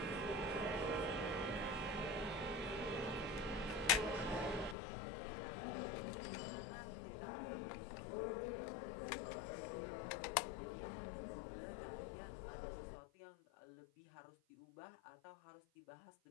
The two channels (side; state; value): right; drops out; at 4.8 s